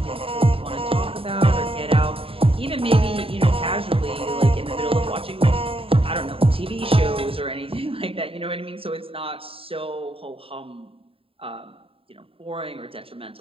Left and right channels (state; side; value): late; left; 0.27 ms